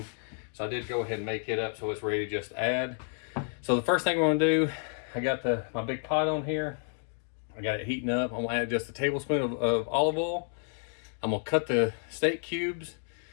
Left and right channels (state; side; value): silent; right; 57 dB below the other